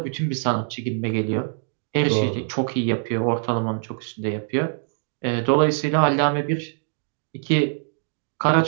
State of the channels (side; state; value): left; silent; digital silence